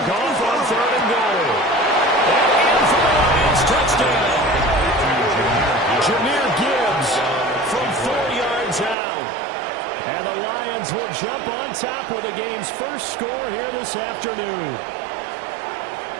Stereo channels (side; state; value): left; drops out; at 9.0 s